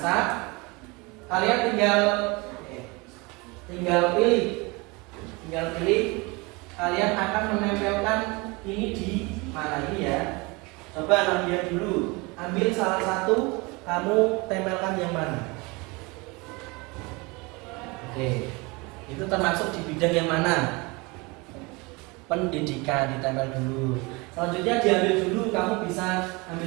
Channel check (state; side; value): quieter; left; 26.3 dB